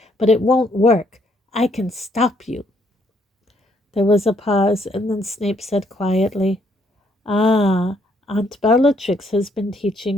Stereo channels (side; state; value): both; normal; correlation 0.70